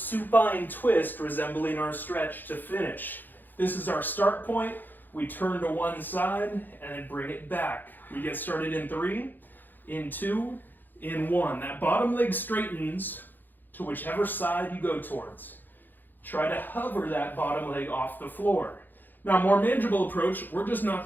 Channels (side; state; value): right; late; 0.089 ms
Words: twist resembling our stretch to finish. This is our start point. We turn to one side and then bring it back. We get started in 3, in 2, in 1. That bottom leg straightens to whichever side you go towards. Try to hover that bottom leg off the floor. Now, more manageable approach, we're just not